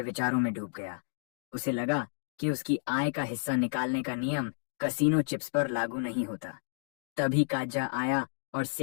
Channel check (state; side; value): silent; right; digital silence